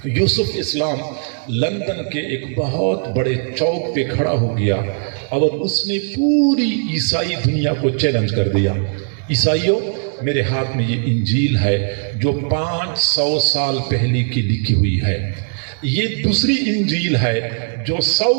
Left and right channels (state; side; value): silent; left; 67 dB below the other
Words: یوسف اسلام لندن کے ایک بہت بڑے چوک پہ کھڑا ہو گیا اور اس نے پوری عیسائی دنیا کو چیلنج کر دیا. عیسائیوں، میرے ہاتھ میں یہ انجیل ہے جو 500 سال پہلے کی لکھی ہوئی ہے. یہ دوسری انجیل ہے جو